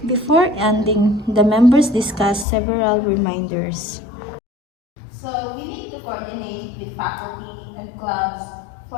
Before ending, the members discussed several reminders. So we need to coordinate with faculty and clubs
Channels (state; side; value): drops out; right; at 2.5 s